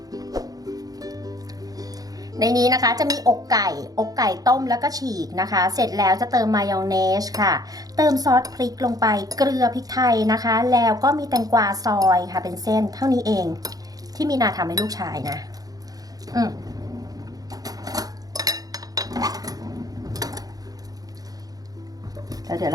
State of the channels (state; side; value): late; left; 0.18 ms